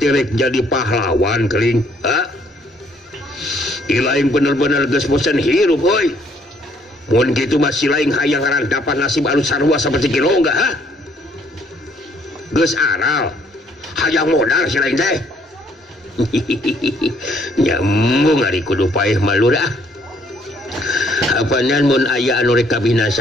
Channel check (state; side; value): normal; both; correlation 0.65